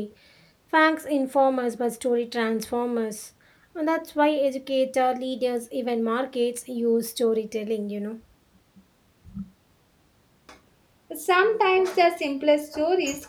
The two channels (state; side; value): identical; both; correlation 1.00